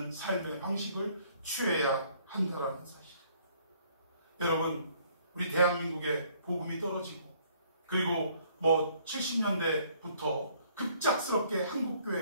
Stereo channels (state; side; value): inverted; both; correlation -0.62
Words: 삶의 방식을 취해야 한다는 사실. 여러분, 우리 대한민국에 복음이 떨어지고 그리고 70년대부터 급작스럽게